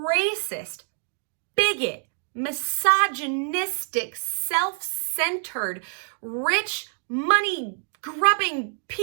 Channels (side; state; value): left; silent; digital silence